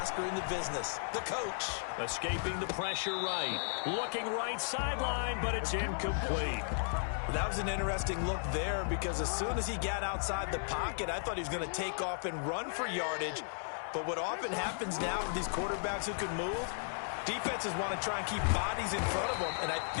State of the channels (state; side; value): silent; right; digital silence